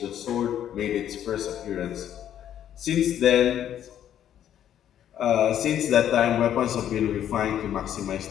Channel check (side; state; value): right; quieter; 10.5 dB